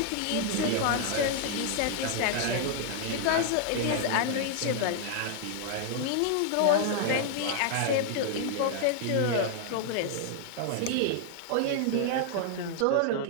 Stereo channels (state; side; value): different; both; correlation 0.00